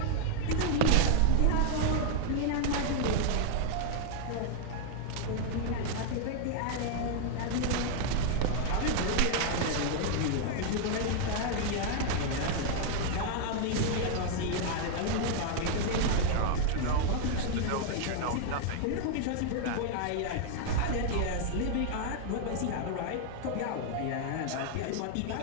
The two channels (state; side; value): different; both; correlation 0.00